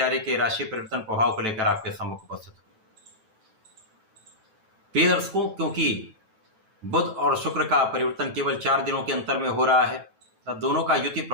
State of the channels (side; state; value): left; late; 9.1 ms